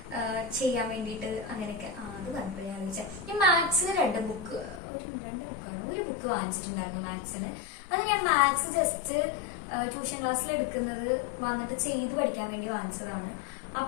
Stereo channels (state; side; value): drops out; right; at 4.8 s